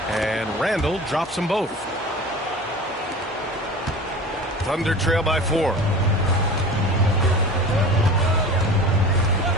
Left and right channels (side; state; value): both; normal; correlation 0.36